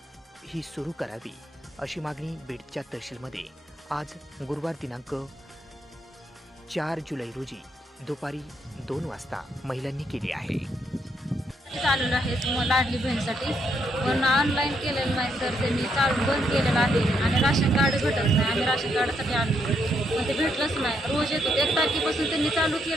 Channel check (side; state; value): both; normal; correlation 0.75